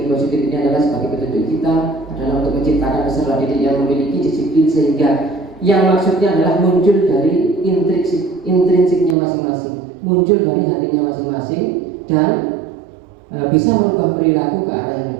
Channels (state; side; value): drops out; left; at 9.2 s